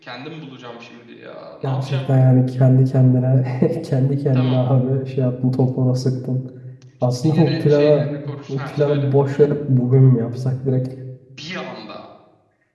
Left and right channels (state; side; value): identical; both; correlation 1.00